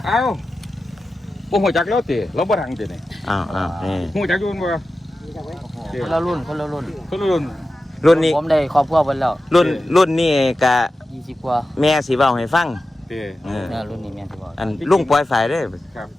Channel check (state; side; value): normal; both; correlation 0.93